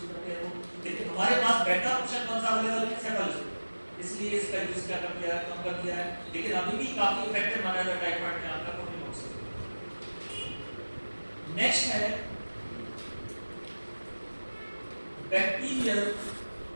करते हैं वो, लेकिन हमारे पास बेटर ऑप्शन कौन सा अवेलेबल है? सेफालोस्कोपिस। इसलिए इसका यूज क्या कर दिया है? कम कर दिया है, लेकिन अभी भी काफी इफेक्टिव माना जाता है टाइफाइड में आपका कोल्डिमोक्सामोल। नेक्स्ट है बैक्टीरियल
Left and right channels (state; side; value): inverted; both; correlation -1.00